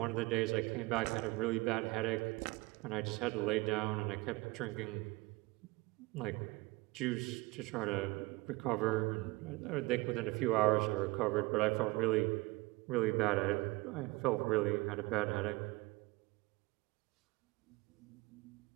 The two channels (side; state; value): left; quieter; 23.2 dB